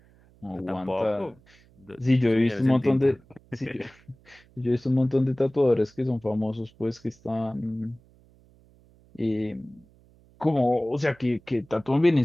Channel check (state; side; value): noise; right; hum, 29 dB below the sound